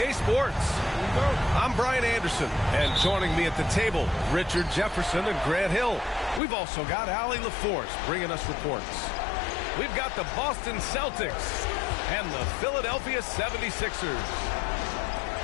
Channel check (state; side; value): drops out; right; at 6.4 s